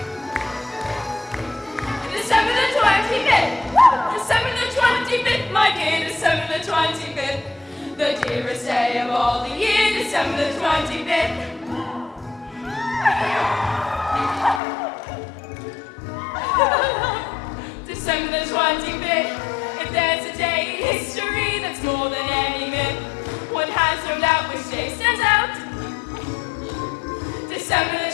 December the 25th. Woo! December the 25th, my dear, December the 25th, the dearest day of all the year. December the 25th. December the 25th. If there's a day in history that's more than any myth, one has no doubt which day stands out. December the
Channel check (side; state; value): right; drops out; at 14.6 s